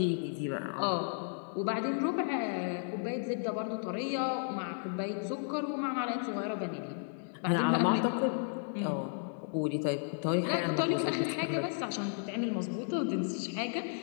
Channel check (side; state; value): right; silent; digital silence